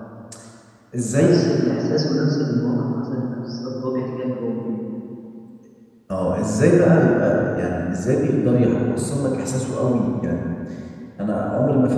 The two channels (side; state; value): both; identical; correlation 1.00